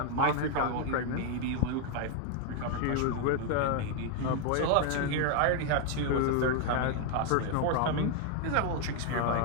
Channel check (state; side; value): different; both; correlation 0.00